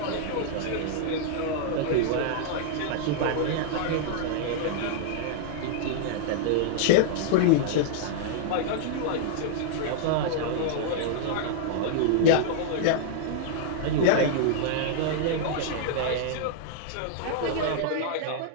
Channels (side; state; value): both; different; correlation -0.01